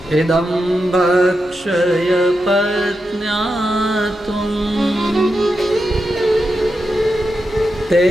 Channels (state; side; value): normal; both; correlation 0.87